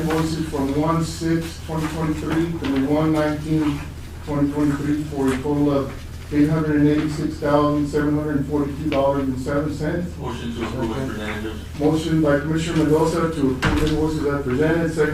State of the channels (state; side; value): identical; both; correlation 1.00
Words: from 1/6/2023 through 1/19/2023 for a total of $886,742.07. Motion to approve as presented. Motion by Commissioner Mendoza to approve invoices as presented,